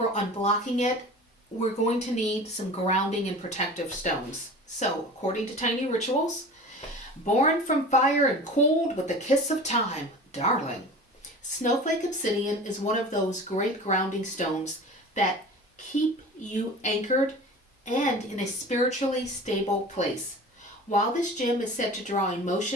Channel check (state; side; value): normal; both; correlation 0.38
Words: unblocking it, we're going to need some grounding and protective stones. So, according to Tiny Rituals, born from fire and cooled with the kiss of time, darling. Snowflake obsidian is one of those great grounding stones that keep you anchored and in a spiritually stable place. While this gem is said to draw